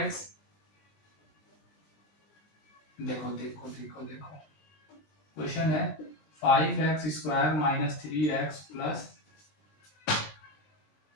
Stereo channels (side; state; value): right; late; 20 ms